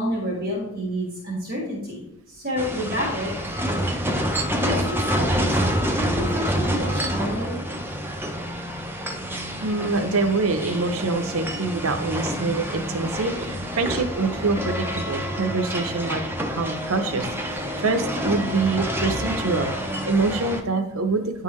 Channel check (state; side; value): normal; both; correlation 0.36